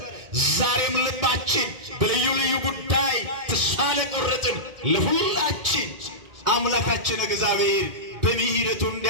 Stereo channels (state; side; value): late; left; 2.1 ms